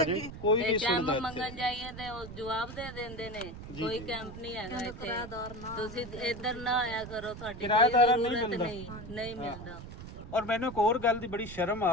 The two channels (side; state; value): right; noise; rumble, 12 dB below the sound